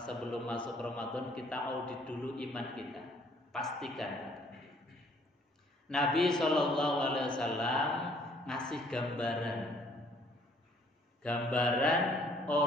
sebelum masuk Ramadan kita audit dulu iman kita, pastikan. Nabi SAW ngasih gambaran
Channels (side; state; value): both; normal; correlation 0.61